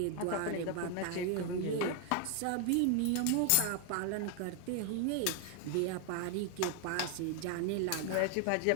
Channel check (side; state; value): both; different; correlation 0.00